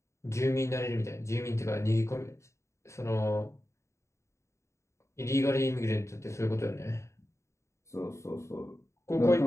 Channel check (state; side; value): late; right; 0.14 ms